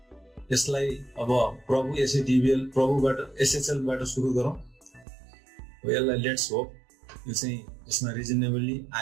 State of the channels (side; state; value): left; drops out; at 5.1 s